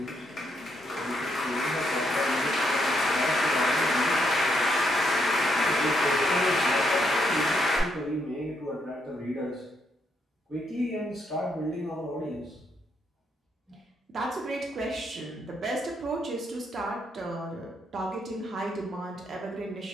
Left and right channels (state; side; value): normal; both; correlation 0.76